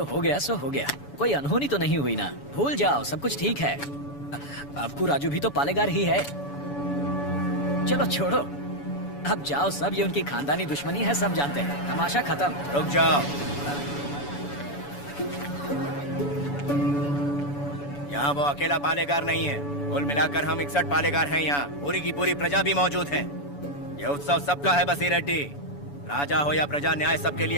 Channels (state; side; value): late; right; 7.0 ms